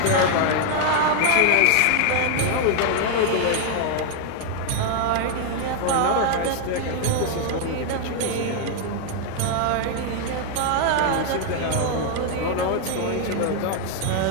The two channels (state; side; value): different; both; correlation 0.00